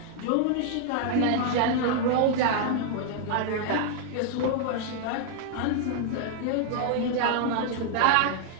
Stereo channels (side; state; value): both; different; correlation 0.00